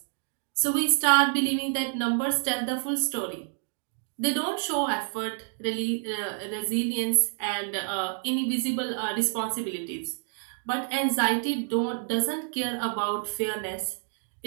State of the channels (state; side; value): silent; left; 57 dB below the other